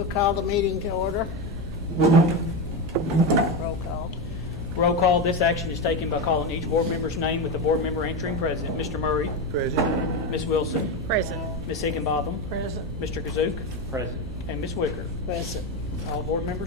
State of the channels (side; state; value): left; noise; hum, 11 dB below the sound